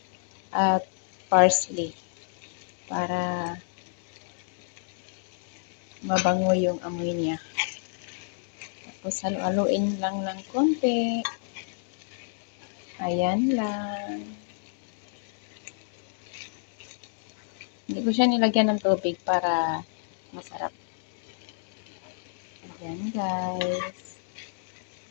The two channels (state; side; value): silent; right; digital silence